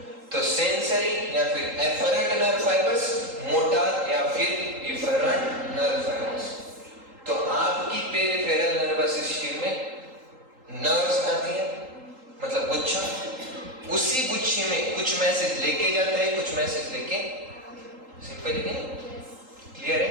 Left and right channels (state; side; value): late; left; 3.8 ms